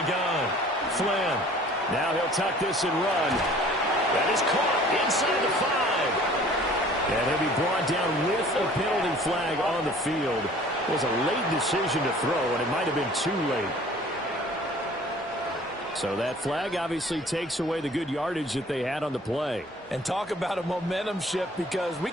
gun. Flynn. Now he'll tuck this and run. That is caught inside the 5. And he'll be brought down with a penalty flag on the field. It was a late decision to throw, and it might have been too late. So that flag obviously takes away the good yardage that they had on the play. And talk about a momentum shift, because we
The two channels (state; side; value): normal; both; correlation 0.50